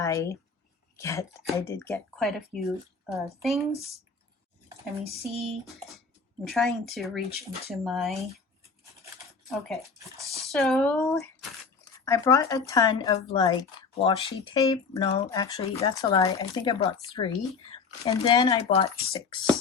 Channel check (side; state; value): right; quieter; 4.9 dB